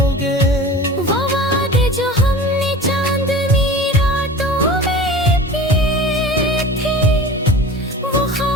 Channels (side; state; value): both; normal; correlation 0.37